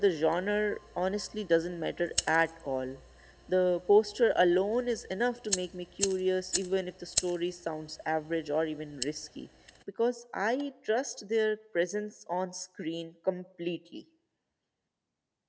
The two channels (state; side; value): identical; both; correlation 1.00